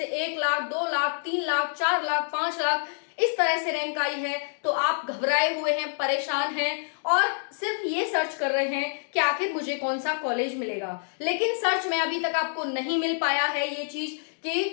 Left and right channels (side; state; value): right; silent; digital silence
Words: 1 लाख, 2 लाख, 3 लाख, 4 लाख, 5 लाख, इस तरह से रैंक आई है, तो आप घबराए हुए हैं, परेशान हैं और सिर्फ ये सर्च कर रहे हैं कि आखिर मुझे कौन सा कॉलेज मिलेगा। लेकिन सर्च में अभी तक आपको नहीं मिल पाया है ये चीज,